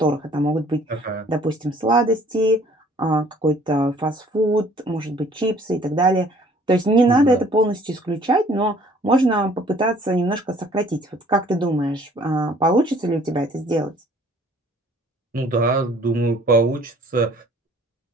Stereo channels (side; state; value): both; normal; correlation 0.56